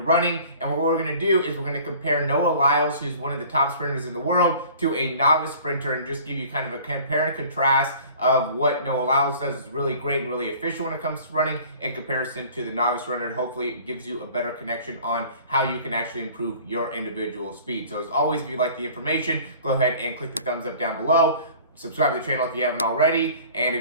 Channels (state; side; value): inverted; both; correlation -0.47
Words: running. And what we're going to do is we're going to compare Noah Lyles, who's one of the top sprinters in the world, to a novice sprinter and just give you kind of a compare and contrast of what Noah Lyles does is really great and really efficient when it comes to running in comparison to the novice runner, and hopefully it gives you a better connection on how you can actually improve your individual speed. So as always, if you like the information, go ahead and click the thumbs up down below. Subscribe to the channel if you haven't already, and